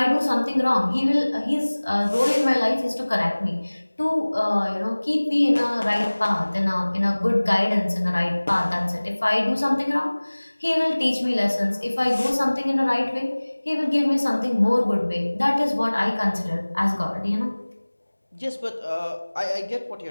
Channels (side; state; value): both; inverted; correlation -1.00